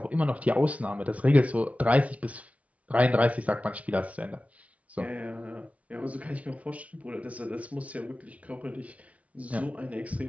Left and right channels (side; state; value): left; late; 0.066 ms